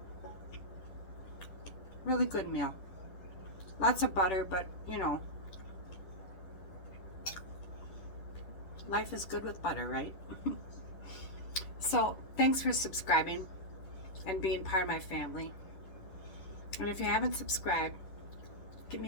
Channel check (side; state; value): right; late; 10 ms